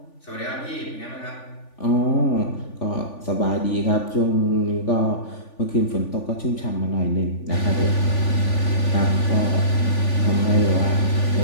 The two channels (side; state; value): right; late; 3.5 ms